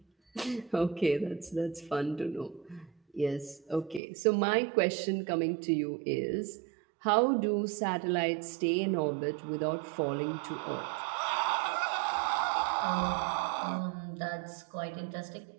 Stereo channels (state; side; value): drops out; left; at 4.0 s